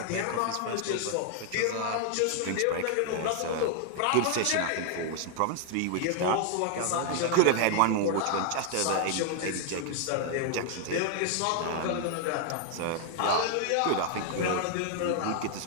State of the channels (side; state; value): both; different; correlation 0.00